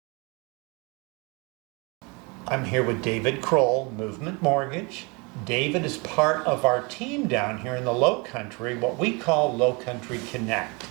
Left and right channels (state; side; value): quieter; left; 29.4 dB